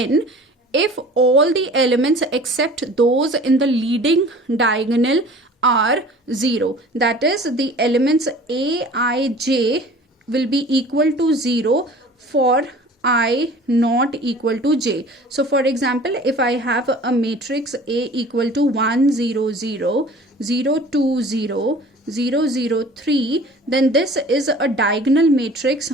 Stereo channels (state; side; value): normal; both; correlation 0.45